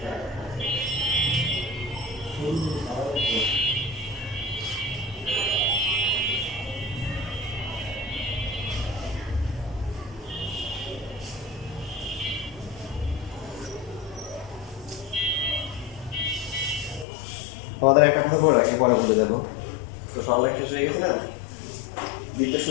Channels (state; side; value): drops out; right; at 17.1 s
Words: আমাদের একটা কথা বলে রাখি, পরে ভুলে যাবো। তো সবাই শেষ হয়ে গেছে না, দিতে